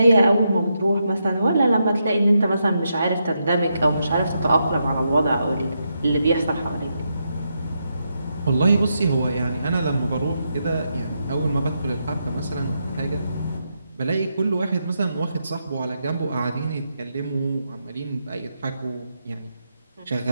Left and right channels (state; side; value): inverted; both; correlation -0.83